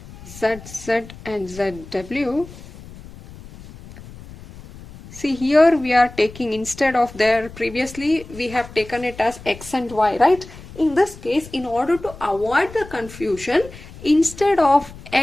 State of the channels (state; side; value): noise; left; rumble, 17 dB below the sound